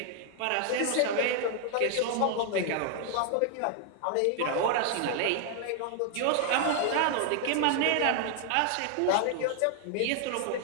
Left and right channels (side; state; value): both; different; correlation 0.00